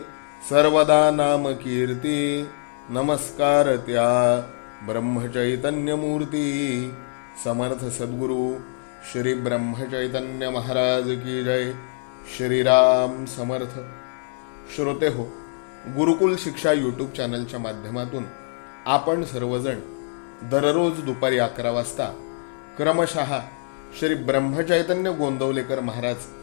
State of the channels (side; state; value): right; silent; digital silence